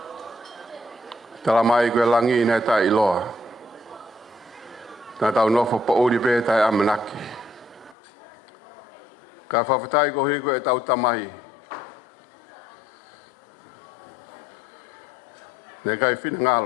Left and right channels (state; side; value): drops out; right; at 8.0 s